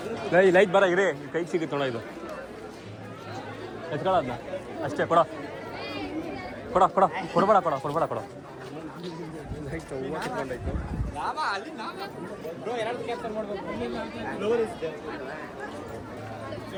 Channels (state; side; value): identical; both; correlation 1.00